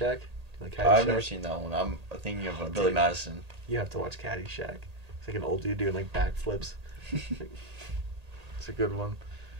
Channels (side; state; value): left; late; 1.8 ms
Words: Do you like Caddyshack? I've never seen that one. I'm thinking of Billy dude. Madison. You have to watch Caddyshack. It's like an old dude doing like backflips. It's a good one.